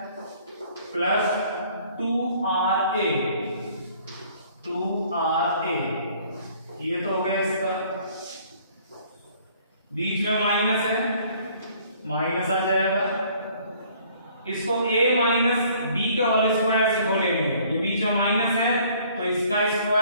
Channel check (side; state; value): both; inverted; correlation -0.58